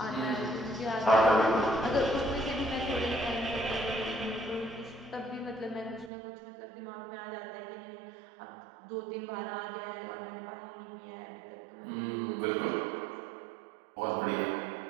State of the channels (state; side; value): drops out; left; at 6.1 s